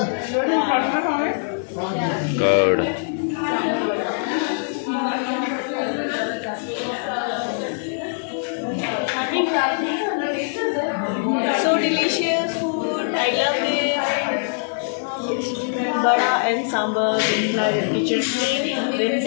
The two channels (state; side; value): silent; right; digital silence